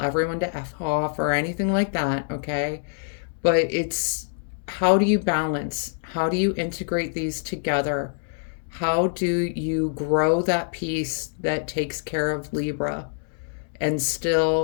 to F off or anything like that, okay? But it's, how do you balance? How do you integrate these together? How do you grow that piece that takes care of Libra and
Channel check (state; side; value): silent; right; 62 dB below the other